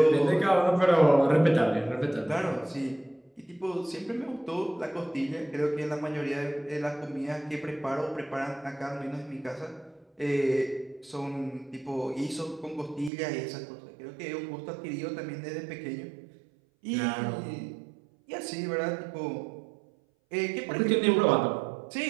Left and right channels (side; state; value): left; drops out; at 13.1 s